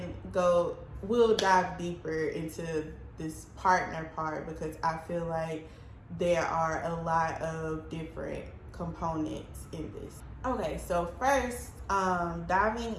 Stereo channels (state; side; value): identical; both; correlation 1.00